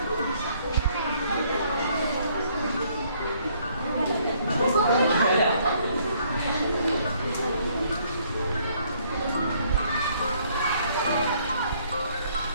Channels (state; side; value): inverted; both; correlation -0.65